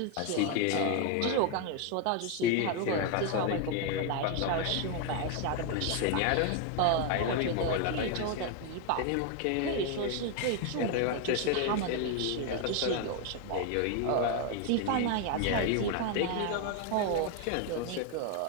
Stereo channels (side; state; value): both; different; correlation 0.01